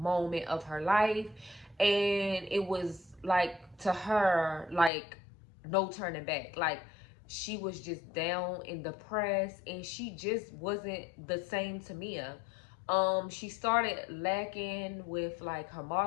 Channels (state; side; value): drops out; right; at 4.9 s